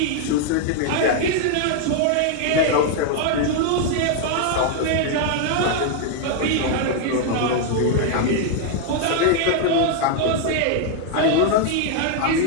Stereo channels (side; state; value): both; different; correlation 0.00